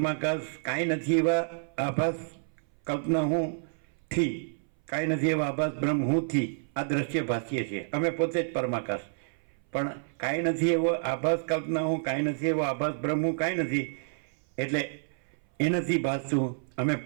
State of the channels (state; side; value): silent; left; 58 dB below the other